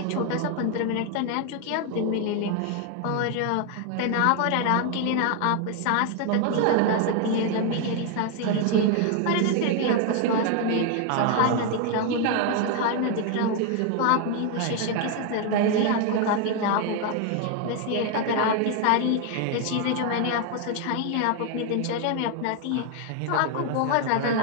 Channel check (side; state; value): both; different; correlation 0.01